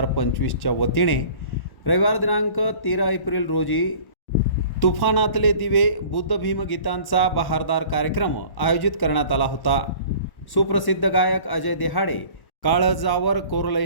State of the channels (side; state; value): right; late; 1.1 ms